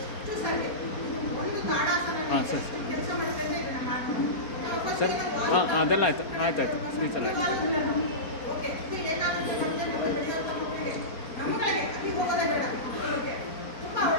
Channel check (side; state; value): right; late; 4.3 ms